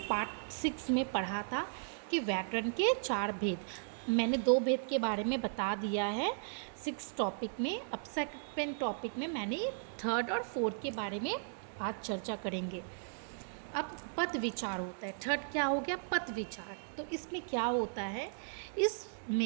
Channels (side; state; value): left; silent; digital silence